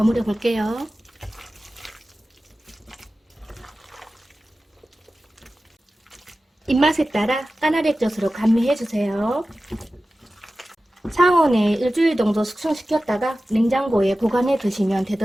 볼게요. 입맛에 따라 까나리액젓으로 감미해주세요. 상온에 일주일 정도 숙성시켰다가 냉장고에 보관해 두시면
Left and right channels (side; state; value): both; normal; correlation 0.95